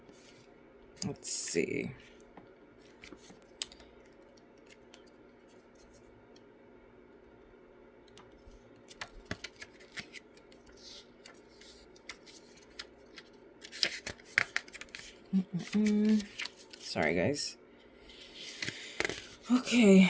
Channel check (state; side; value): identical; both; correlation 1.00